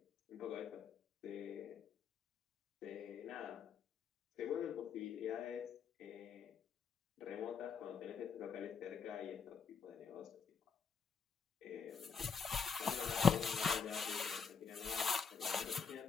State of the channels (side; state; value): right; quieter; 6.2 dB